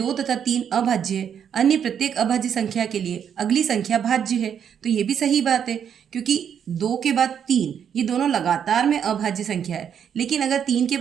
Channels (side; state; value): left; quieter; 8.3 dB